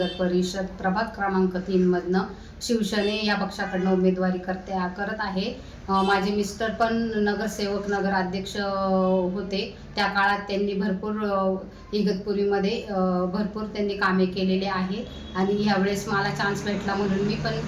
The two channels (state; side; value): identical; both; correlation 1.00